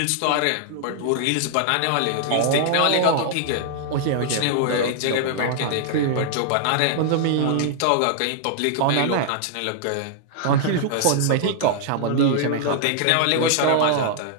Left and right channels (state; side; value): different; both; correlation -0.01